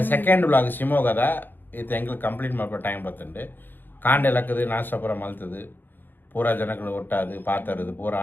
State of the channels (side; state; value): right; late; 0.093 ms